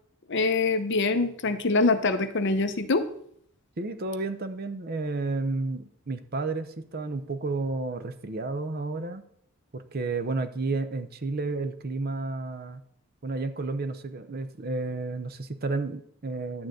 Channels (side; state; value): both; normal; correlation 0.21